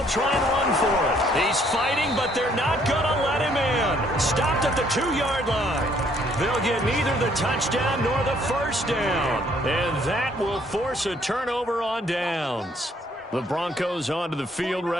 try and run for it. He's fighting, but they're not going to let him in. Stopped at the 2-yard line. They'll get neither the touchdown nor the first down. And that will force a turnover on downs. The Broncos onto the field,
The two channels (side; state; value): both; normal; correlation 0.65